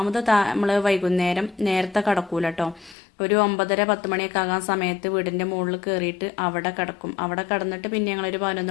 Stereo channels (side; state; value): right; drops out; at 3.0 s